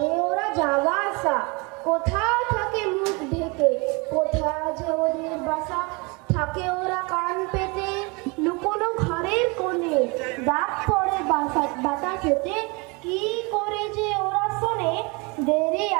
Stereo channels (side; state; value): left; quieter; 28.6 dB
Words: ওরা যাওয়া আসা, কোথা থাকে মুখ ঢেকে, কোথা যে ওদের বাসা। থাকে ওরা কান পেতে লুকোনো ঘরের কোণে, ডাক পড়ে বাতাসেতে, কি করে যে ওরা শোনে। দেরি